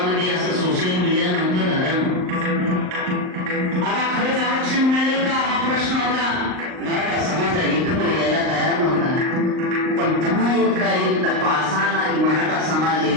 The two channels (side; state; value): left; late; 38 ms